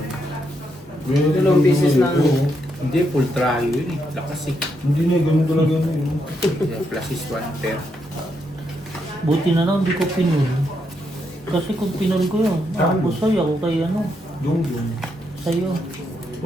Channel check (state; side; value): normal; both; correlation 0.79